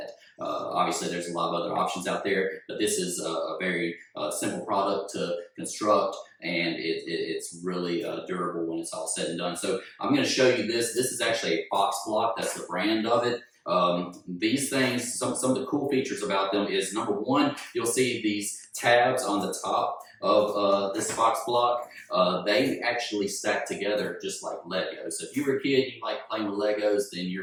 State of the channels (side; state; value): both; identical; correlation 1.00